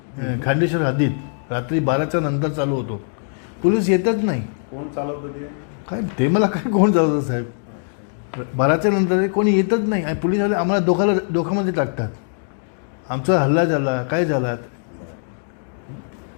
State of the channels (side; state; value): right; silent; digital silence